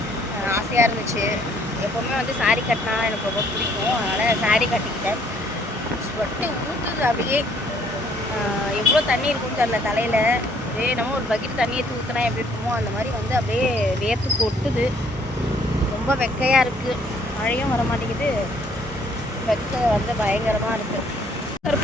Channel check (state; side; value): normal; both; correlation 0.63